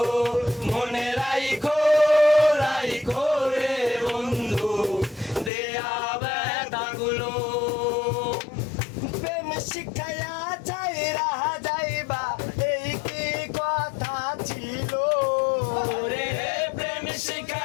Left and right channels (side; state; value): right; drops out; at 5.5 s